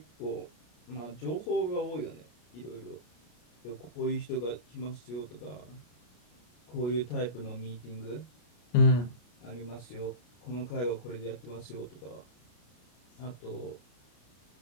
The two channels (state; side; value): late; right; 33 ms